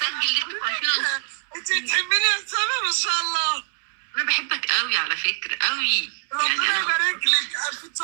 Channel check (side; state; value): left; silent; 63 dB below the other